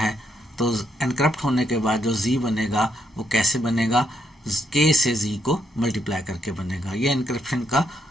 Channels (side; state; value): both; normal; correlation 0.76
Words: तो एनक्रिप्ट होने के बाद जो जी बनेगा वो कैसे बनेगा, के से जी को मल्टीप्लाई करके बनेगा। ये एनक्रिप्शन का